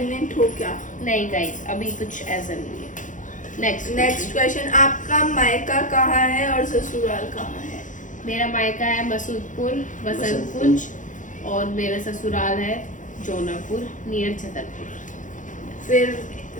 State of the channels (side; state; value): right; late; 0.37 ms